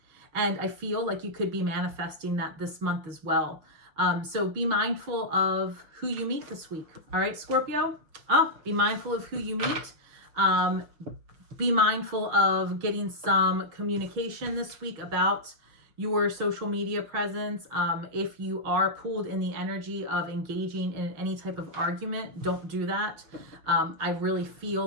And I feel like you could be manifesting that this month as well. So be mindful of who you meet this week, all right, Scorpio? Be mindful of who you meet. Be mindful of getting some communication this week about your social media presence. If you are pulled in the energy of engaging in any type of argument, don't do that. I really feel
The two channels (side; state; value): left; late; 6.3 ms